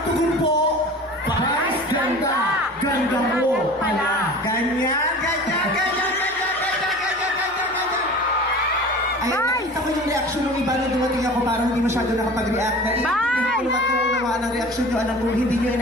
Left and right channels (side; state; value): both; normal; correlation 0.39